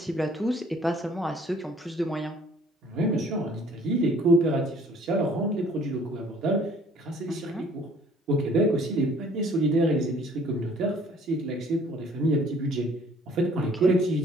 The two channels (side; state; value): both; normal; correlation 0.56